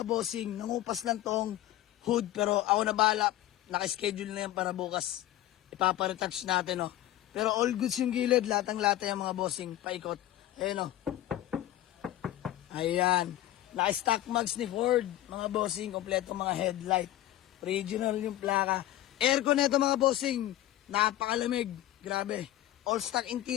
bossing. Nangupas lang tong hood pero ako na bahala. Naka-schedule na yan para bukas. Ipaparetouch natin, oh. Pero all goods yung gilid, latang-lata yung mga bossing, paikot. Ayan, oh. Ayan. Naka-stock mags ni Ford, mga bossing, kompleto mga headlight. Original yung plaka. Aircon nito mga bossing, napakalamig. Grabe. All stock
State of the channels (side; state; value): right; quieter; 14.1 dB